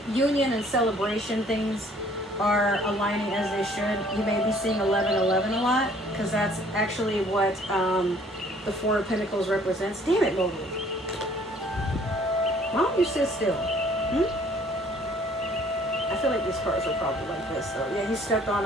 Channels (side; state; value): both; normal; correlation 0.58